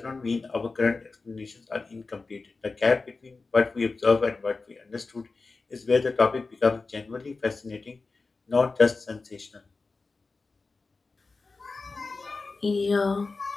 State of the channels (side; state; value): right; quieter; 3.9 dB